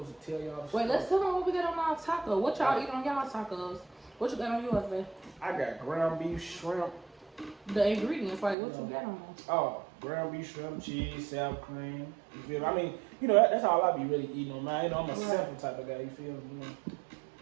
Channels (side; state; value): left; drops out; at 8.6 s